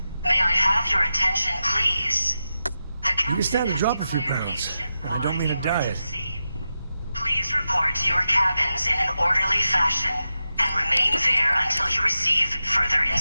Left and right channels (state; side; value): inverted; both; correlation -0.91